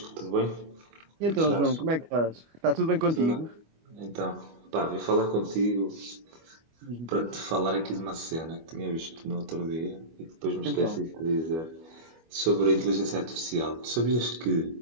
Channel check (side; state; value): left; late; 25 ms